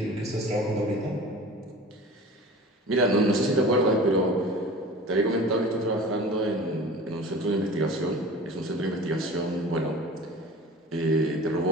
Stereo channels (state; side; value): normal; both; correlation 0.39